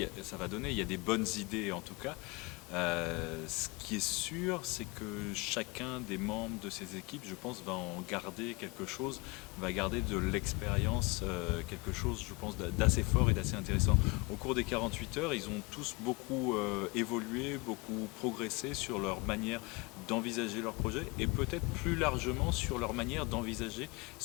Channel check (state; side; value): quieter; right; 26.7 dB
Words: donner. Il y a des bonnes idées en tout cas. Ce qui est sûr, c'est que chacun des membres de ces équipes, je pense, va en garder quelque chose, va garder de l'expérience, quelque chose, je pense, d'assez fort et d'assez intéressant. Au cours des 48 heures, ils ont tous beaucoup évolué, beaucoup progressé sur leur manière d'envisager leur projet et peut-être plus largement sur leur manière d'envisager